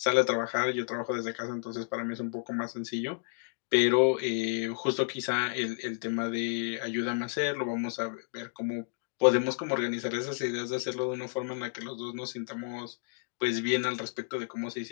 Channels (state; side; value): silent; right; digital silence